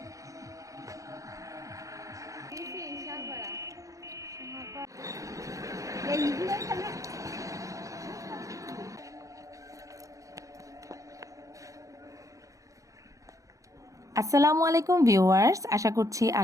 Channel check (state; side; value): late; left; 0.16 ms